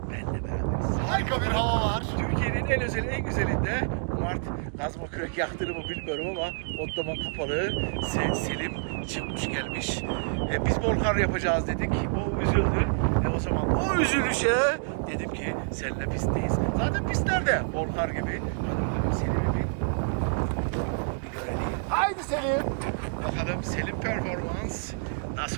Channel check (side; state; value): left; silent; digital silence